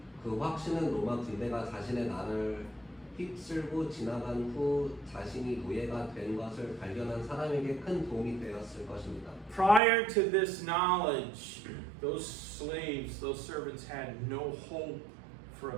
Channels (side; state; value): left; drops out; at 9.8 s